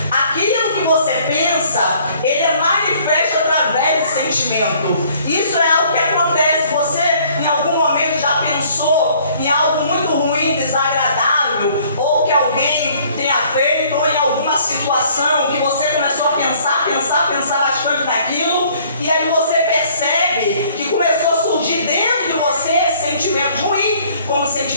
aquilo que você pensa, ele é manifesto através do sentimento. Isso é algo que acontece. Você em algum momento já pensou em algo muito ruim, desagradável, ou que alguém tenha feito, ou em alguma situação que você começou a pensar bastante naquilo, e aí você percebe que começou a surgir dentro de você sentimentos ruins, como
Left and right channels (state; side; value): inverted; both; correlation -0.58